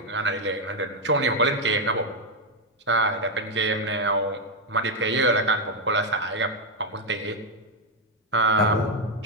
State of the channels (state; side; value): normal; both; correlation 0.02